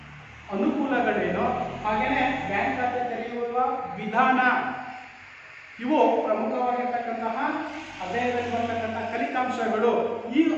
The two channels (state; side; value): identical; both; correlation 1.00